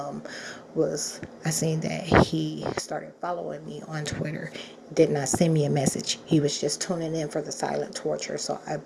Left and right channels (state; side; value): identical; both; correlation 1.00